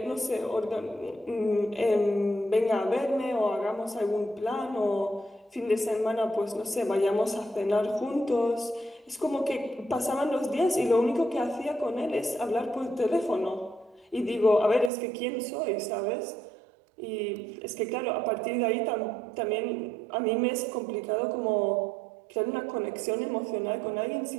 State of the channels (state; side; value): drops out; left; at 14.9 s